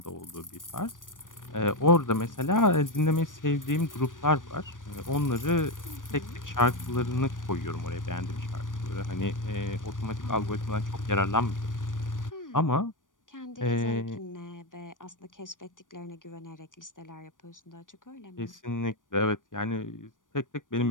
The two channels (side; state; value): right; late; 0.88 ms